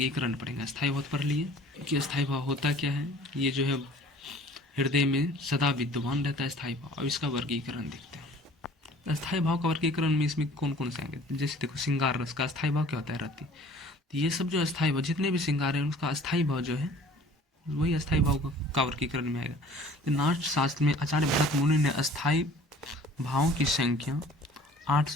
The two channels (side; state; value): both; normal; correlation 0.50